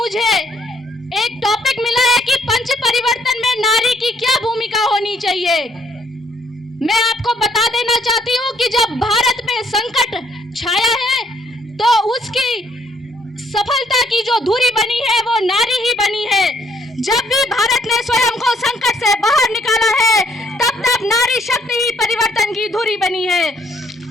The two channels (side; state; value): both; normal; correlation 0.66